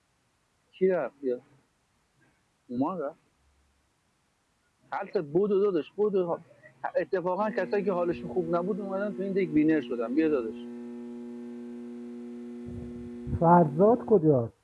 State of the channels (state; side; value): identical; both; correlation 1.00